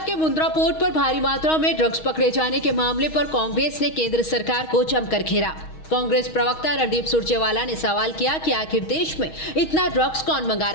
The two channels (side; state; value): right; late; 6.3 ms